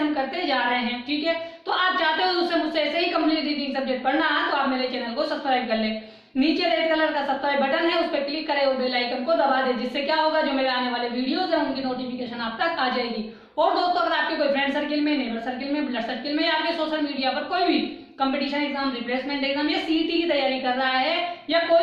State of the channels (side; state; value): both; identical; correlation 1.00